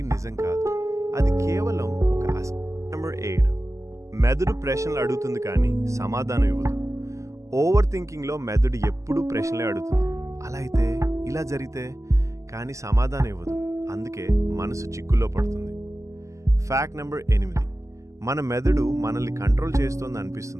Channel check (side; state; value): left; late; 0.15 ms